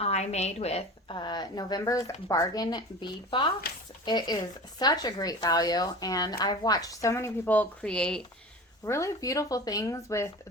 made with November's Bargain Bead Box. It is such a great value, and I've watched so many people create really beautiful things with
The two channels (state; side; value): normal; both; correlation 0.35